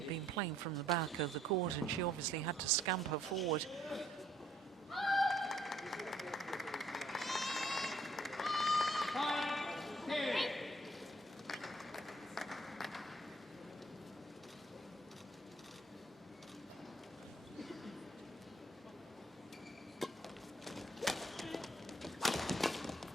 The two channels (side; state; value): both; normal; correlation 0.65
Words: been playing from the back of the court, and she obviously had to scamper forward.